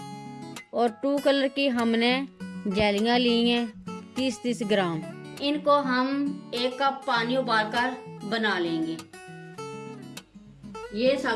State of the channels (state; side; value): identical; both; correlation 1.00